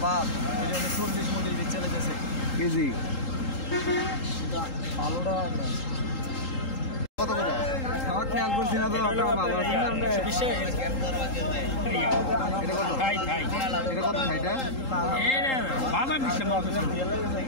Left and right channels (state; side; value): late; right; 3.8 ms